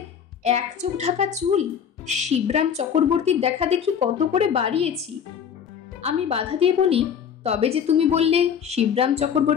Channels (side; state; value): right; quieter; 7.9 dB